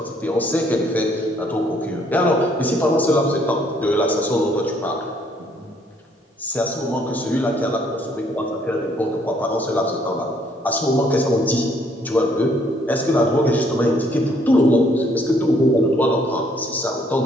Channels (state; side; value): normal; both; correlation 0.66